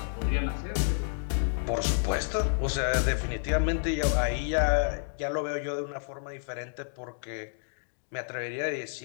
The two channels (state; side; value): silent; right; digital silence